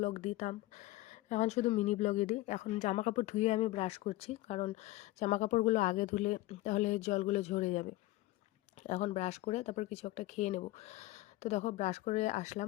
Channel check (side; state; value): right; quieter; 18.1 dB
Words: দিতাম, এখন শুধু মিনি ব্লগই দিই। এখন জামা কাপড় ধুয়ে আমি ব্রাশ করছি, কারণ জামা কাপড়গুলো আগে ধুলে তাহলে জলগুলো ঝরে যাবে। এখন ব্রাশ করে তারপর কিছু একটা খেয়ে নেব। তো দেখো ব্রাশ করে